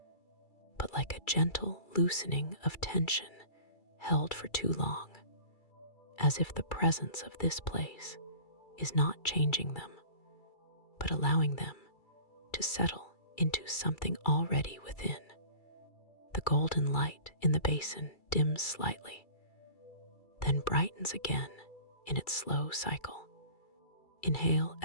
but like a gentle loosening of tension held for too long, as if the presence of this place is not changing them, but allowing them to settle into something already within. The golden light in the basin dims slightly, then brightens again in its slow cycle. Inhale,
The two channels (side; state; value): right; late; 2.3 ms